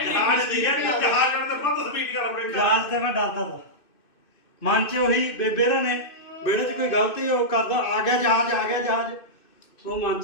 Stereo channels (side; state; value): right; late; 2.6 ms